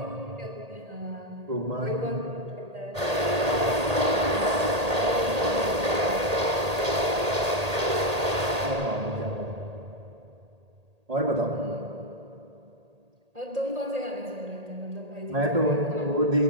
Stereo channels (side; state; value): left; late; 1.8 ms